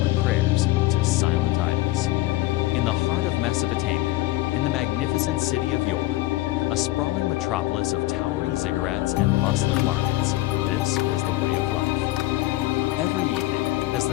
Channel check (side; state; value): right; quieter; 17.7 dB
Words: prayers to silent idols. In the heart of Mesopotamia, in the magnificent city of yore, a sprawling metropolis of towering ziggurats and bustling markets, this was the way of life. Every evening, as